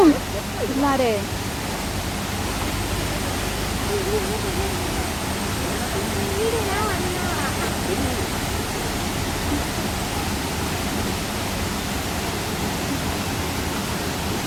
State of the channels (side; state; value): both; identical; correlation 1.00